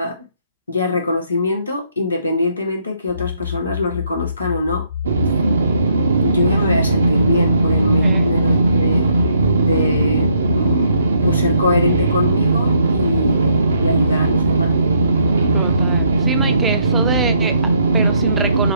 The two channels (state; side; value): inverted; both; correlation -0.71